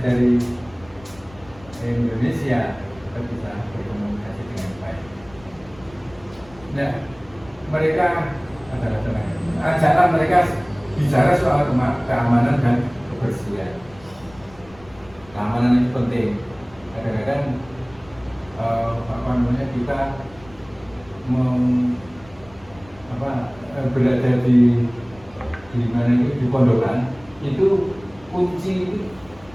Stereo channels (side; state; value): left; noise; rumble, 24 dB below the sound